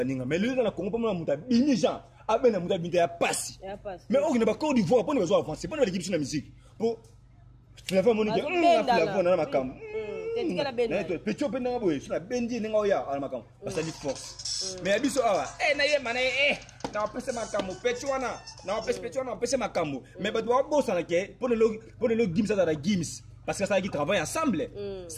mais lui na Congo pas muta bini Jean abena muta binta ya passe mais on ne ba Côte d'Ivoire pour ne besoin avancer pour ne l'équipe sur la musique pour la femme monique la na makam petit peu na boy sur la bendi nga oya ala makam parce que force mais abiso awa na ye mana na pese makam petit wana na pese makam mais ba doit bossa na ke pour le Gims à la Gims parce que ça qui travaille ensemble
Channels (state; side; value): identical; both; correlation 1.00